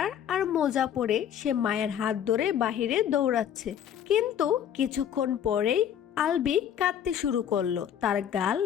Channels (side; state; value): right; quieter; 9.4 dB